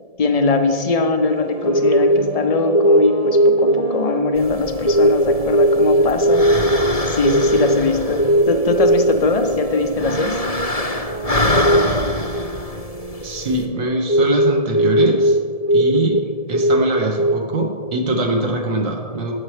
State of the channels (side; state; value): right; late; 1.7 ms